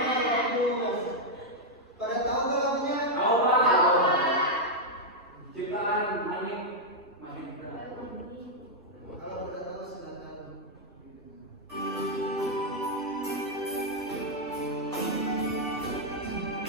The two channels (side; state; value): both; normal; correlation -0.03